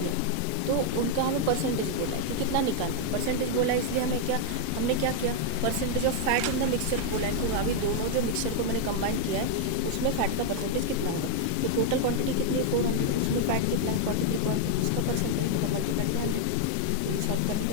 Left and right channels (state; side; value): different; both; correlation 0.00